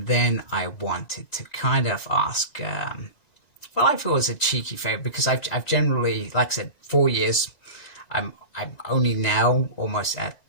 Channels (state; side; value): late; right; 2.0 ms